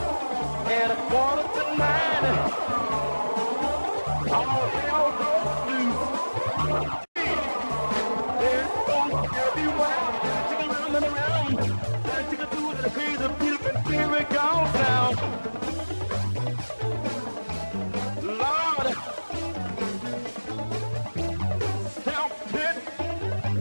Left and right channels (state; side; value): inverted; both; correlation -1.00